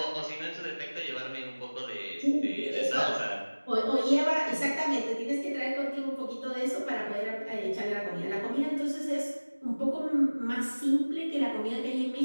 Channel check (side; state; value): both; inverted; correlation -1.00